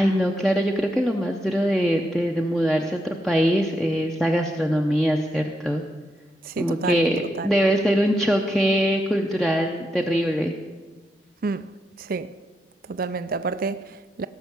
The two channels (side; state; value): both; normal; correlation 0.82